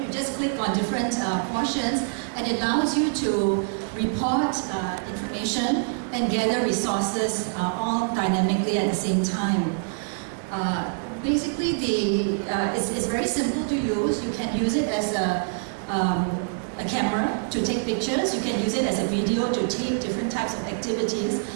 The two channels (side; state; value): left; silent; 60 dB below the other